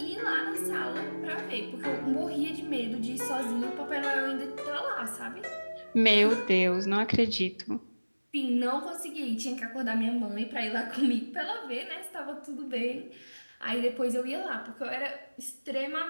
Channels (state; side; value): inverted; both; correlation -1.00